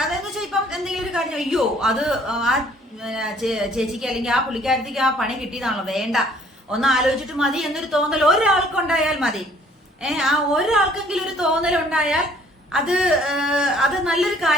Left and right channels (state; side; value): normal; both; correlation 0.59